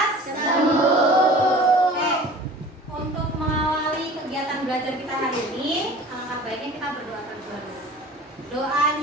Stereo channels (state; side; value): normal; both; correlation 0.43